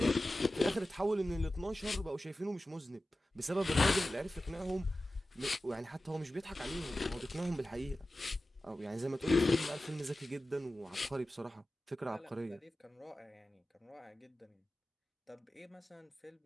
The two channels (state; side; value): normal; both; correlation 0.95